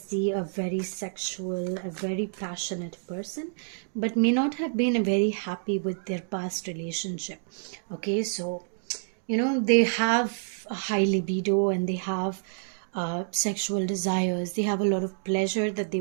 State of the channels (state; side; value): silent; left; digital silence